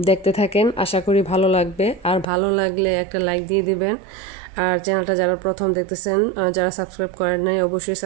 দেখতে থাকেন, আশা করি ভালো লাগবে। আর ভালো লাগলে একটা লাইক দিয়ে দিবেন। আর চ্যানেলটা যারা প্রথম দেখতেছেন, যারা সাবস্ক্রাইব করেন নাই, অবশ্যই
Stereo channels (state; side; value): drops out; left; at 2.2 s